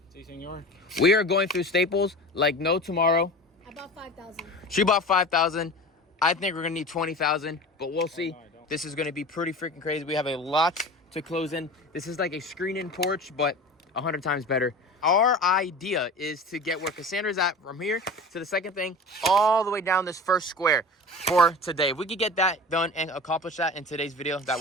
Si, senor. We are going through staples like no tomorrow. I bought 5,000. She bought 5,000. I think we're going to need 20,000, but we'll see. This is going to be pretty freaking crazy. We have a lot to close in. This is like a screen-in porch, but 100 times better. Our idea is to get where Cassandra's at from here to the second thing, all the way down this first square for today. If we could get that done and accomplish that in today's video, that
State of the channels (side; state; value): both; normal; correlation 0.35